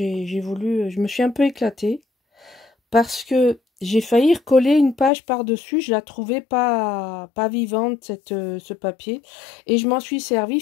voulu... Je me suis un peu éclatée. Parce que j'ai failli recoller une page par-dessus. Je la trouvais pas vivante, ce papier. Et je m'en suis servi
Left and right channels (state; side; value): drops out; right; at 5.1 s